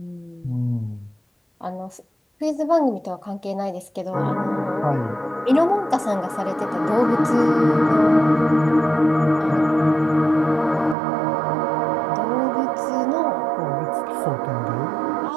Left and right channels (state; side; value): drops out; left; at 11.0 s